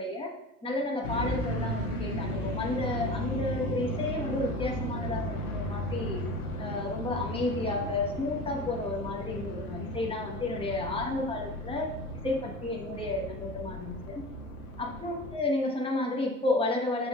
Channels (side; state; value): both; normal; correlation 0.35